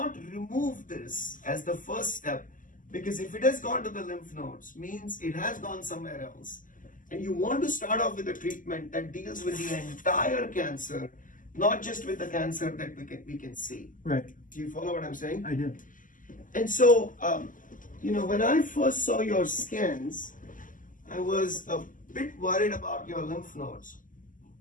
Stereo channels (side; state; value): right; late; 0.38 ms